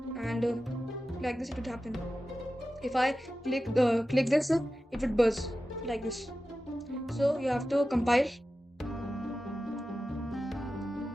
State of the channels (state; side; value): normal; both; correlation 0.93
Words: and like this it would happen. If I click this, it would buzz like this. So you have to compile,